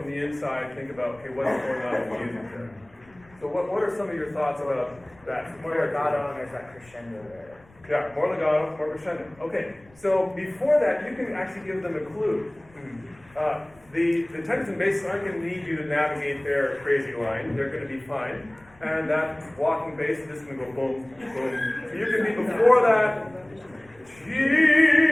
the inside, think about, okay, what's going on in the music there? So what are some of your thoughts about that? More legato, and there's that crescendo there. Yeah, more legato, more crescendo. Okay, so before that, you can actually give them a clue. The tenors and basses aren't going to need you to navigate their crazy line. They're going to be fine. And that walking bass is just going to go boom, boom. So you can be before that,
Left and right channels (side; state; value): left; noise; rumble, 28 dB below the sound